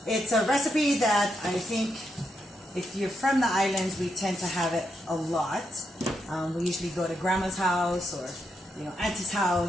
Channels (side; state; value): both; normal; correlation 0.81